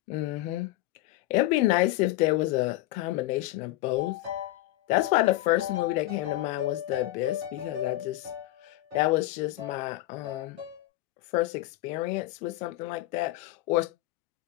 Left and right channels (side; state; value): right; quieter; 16.7 dB